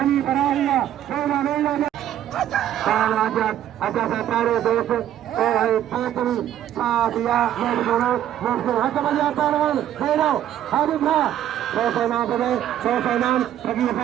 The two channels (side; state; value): left; quieter; 11.4 dB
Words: बरा हुआ अच्छा सारे दोस्त पांचवी साथिया मेरे दोनों हट बजा पहलवान फेरो हाजिर था 100 नाम बने 100 नाम फकीर